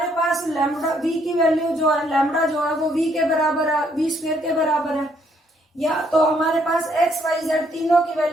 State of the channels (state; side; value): normal; both; correlation 0.69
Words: पास लैम्डा v की वैल्यू जो है, लैम्डा जो है वो v के बराबर है, v स्क्वेयर के बराबर है, या तो हमारे पास x y z तीनों की